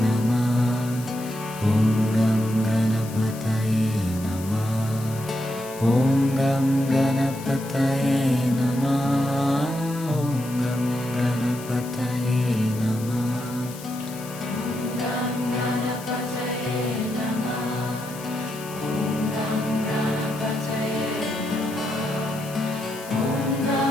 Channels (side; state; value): left; noise; hiss, 16 dB below the sound